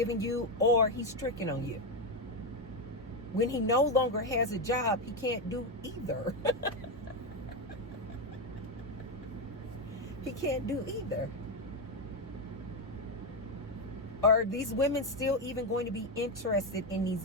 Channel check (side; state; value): both; normal; correlation 0.08